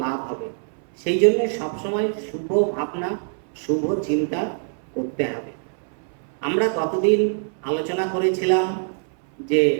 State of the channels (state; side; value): silent; left; 63 dB below the other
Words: লাভ হবে। সেই জন্য সবসময় শুভ ভাবনা শুভ চিন্তা করতে হবে। আমরা গতদিন আলোচনা করেছিলাম যে